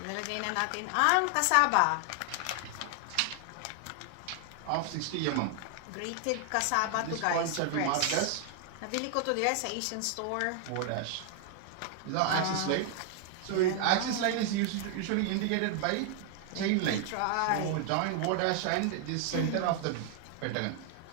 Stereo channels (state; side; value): different; both; correlation 0.00